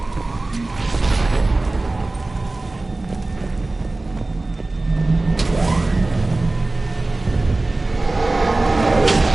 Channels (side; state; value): left; quieter; 3.0 dB